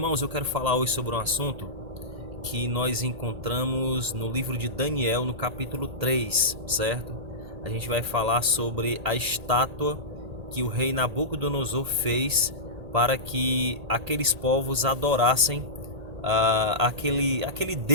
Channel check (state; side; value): late; left; 1.8 ms